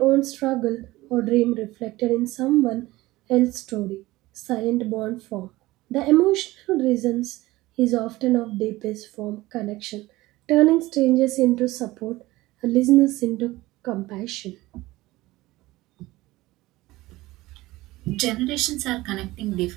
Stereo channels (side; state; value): left; quieter; 18.7 dB